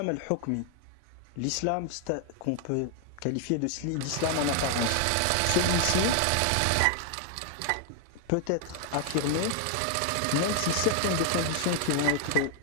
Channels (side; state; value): both; different; correlation 0.00